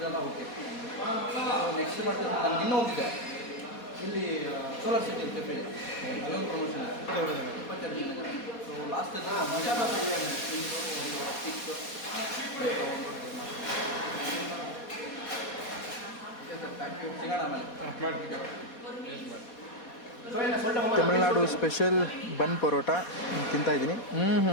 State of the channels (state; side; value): late; right; 4.2 ms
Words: ಓಕೆ. ನೆಕ್ಸ್ಟ್ ಮಾಡ್ತಿದ್ದೆ ನಾನು ಇನ್ನೂ ಹೋಗಿದ್ದೆ. ಇಲ್ಲಿ ಸೋಲಾರ್ ಸಿಟಿ ಕೆಫೆ ಅಲ್ಲೊಂದು ಪ್ರಮೋಷನ್ 22 ಜನ ಸೊ ಲಾಸ್ಟ್ ಮಸಾಲ ಬಿರಿಯಾನಿ ಸಿಗೋಣ ಆಮೇಲೆ ತಮಿಳ್ನಾಡು ಸ್ಪೆಷಲ್ ಬನ್ ಪರೋಟ ತಿಂತಾ ಇದ್ದೀನಿ.